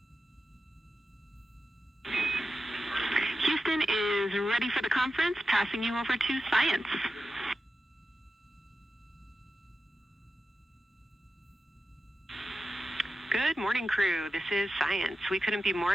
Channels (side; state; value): both; normal; correlation 0.92